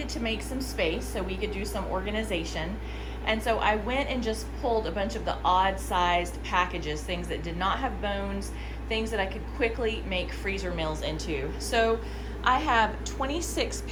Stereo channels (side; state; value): both; identical; correlation 1.00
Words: to make some space so we could do some organization. And so I went and just pulled a bunch of the odd sized packages, things that did not have bones, things that I could quickly make freezer meals into. So I have 26